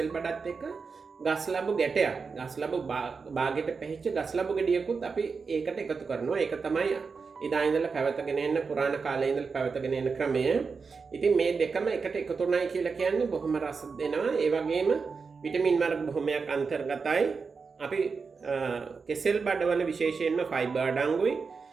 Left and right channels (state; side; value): quieter; left; 5.0 dB